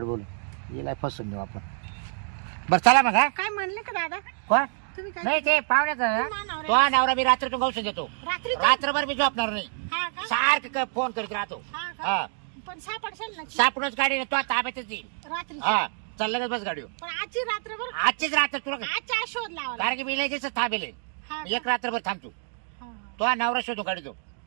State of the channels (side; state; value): left; silent; 60 dB below the other